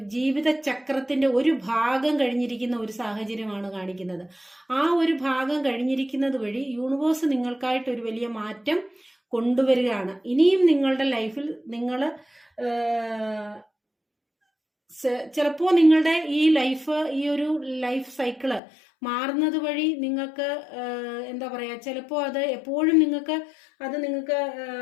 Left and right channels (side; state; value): right; drops out; at 18.6 s